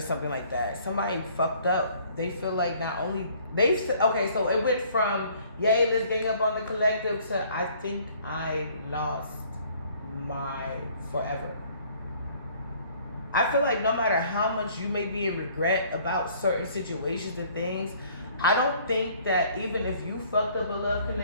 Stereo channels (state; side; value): inverted; both; correlation -0.58